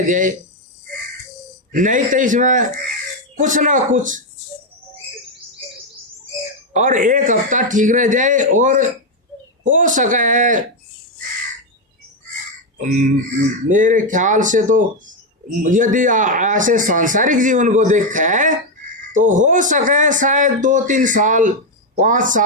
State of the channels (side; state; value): both; normal; correlation 0.04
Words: जाए, नहीं तो इसमें कुछ ना कुछ, और एक हफ्ता ठीक रह जाए और हो सका है मेरे ख्याल से तो यदि ऐसे सांसारिक जीवन को देखा है तो हो सके शायद 2-3 साल 5